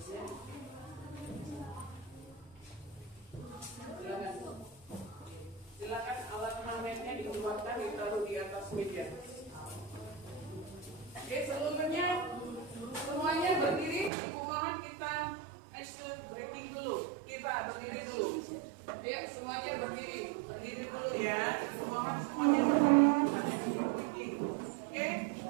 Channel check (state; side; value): drops out; left; at 14.1 s